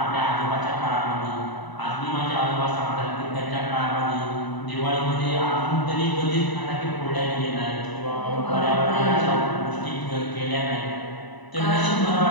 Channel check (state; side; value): late; right; 1.0 ms